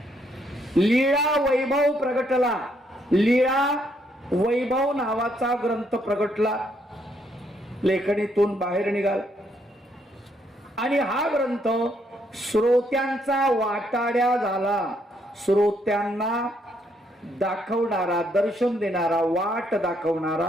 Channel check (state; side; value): normal; both; correlation 0.73